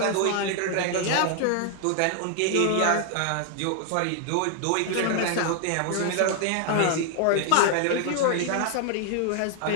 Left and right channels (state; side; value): different; both; correlation 0.00